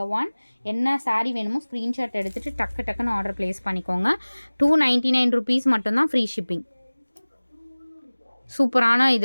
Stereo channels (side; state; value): both; inverted; correlation -1.00